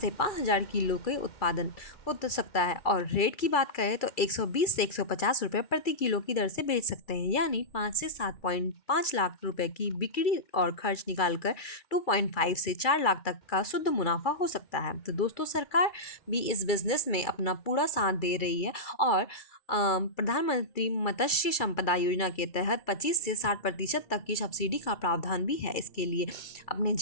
5 हजार किलो के उत्पादन हो तो सकता है। और रेट की बात करें तो 120 से 150 रुपये प्रति किलो की दर से बेच सकते हैं, यानी 5 से 7.5 लाख रुपए की बिक्री और खर्च निकालकर 2.5 से 4 लाख तक का शुद्ध मुनाफा हो सकता है। तो दोस्तों, सरकार भी इस बिजनेस में अपना पूरा साथ दे रही है और प्रधानमंत्री मत्स्य संपदा योजना के तहत 25 से 60% तक की सब्सिडी का प्रावधान भी है। इसके लिए अपने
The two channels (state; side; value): late; right; 2.3 ms